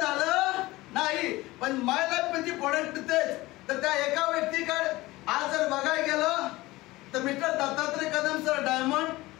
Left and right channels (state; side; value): quieter; right; 19.5 dB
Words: नाही, पण माय लाईफ मध्ये प्रोडक्ट तेच. तर त्या एका व्यक्तीकडे आज जर बघायला गेलं तर mister Dattatray Kadam sir diamond,